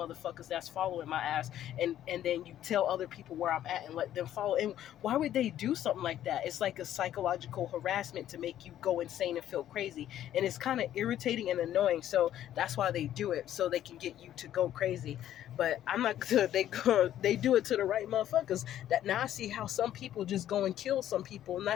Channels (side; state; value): right; quieter; 11.7 dB